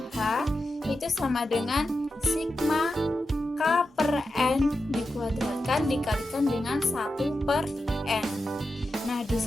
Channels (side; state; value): both; normal; correlation 0.90